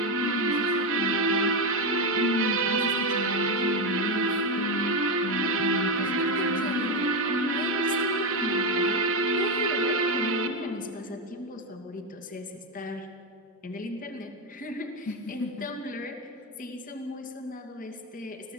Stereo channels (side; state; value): both; normal; correlation 0.10